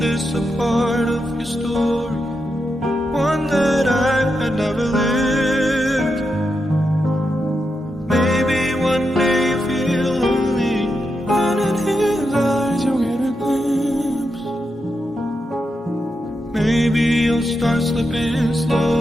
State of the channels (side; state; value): both; normal; correlation 0.86